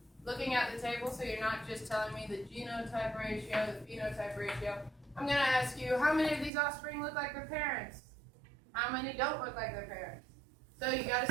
looking at the table, so you're not just telling me the genotype ratio, the phenotype ratio. I'm going to ask you, how many of these offspring look like their parents? How many don't look like their parents? So you got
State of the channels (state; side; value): drops out; left; at 6.5 s